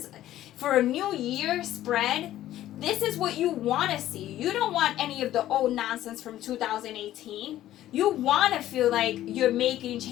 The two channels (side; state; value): right; quieter; 13.4 dB